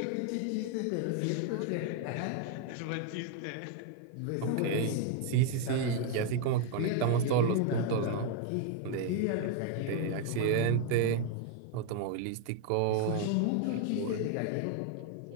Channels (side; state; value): both; different; correlation 0.00